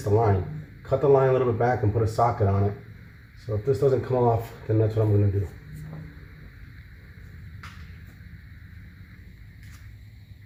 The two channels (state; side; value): identical; both; correlation 1.00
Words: the line. Cut the line a little bit back and put a socket on it. So if this doesn't come off, then that's what I'm gonna do.